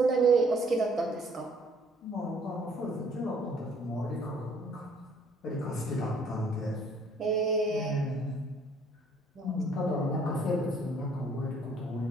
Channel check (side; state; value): both; normal; correlation 0.61